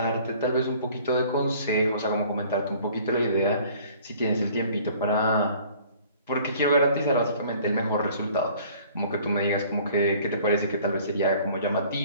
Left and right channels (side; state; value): both; inverted; correlation -0.53